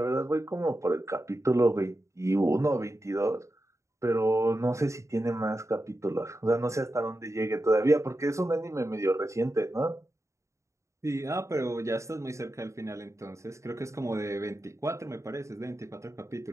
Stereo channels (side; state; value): left; late; 0.14 ms